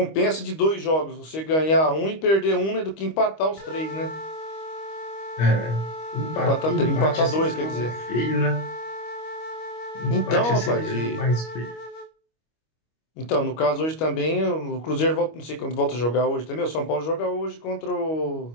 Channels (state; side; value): late; right; 25 ms